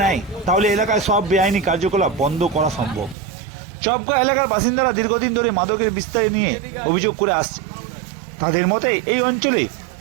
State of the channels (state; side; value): drops out; left; at 3.2 s